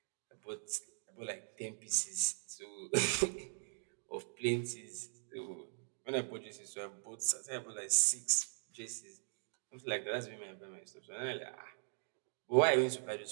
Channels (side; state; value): left; silent; digital silence